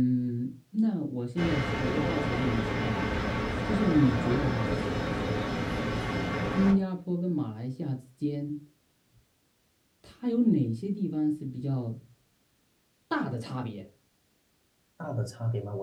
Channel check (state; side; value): identical; both; correlation 1.00